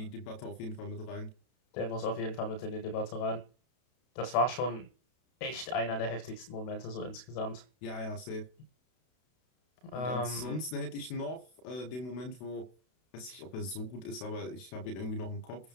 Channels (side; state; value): right; late; 32 ms